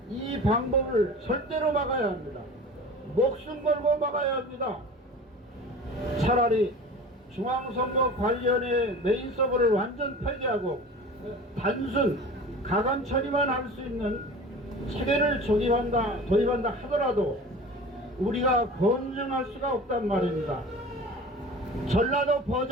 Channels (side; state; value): both; normal; correlation 0.38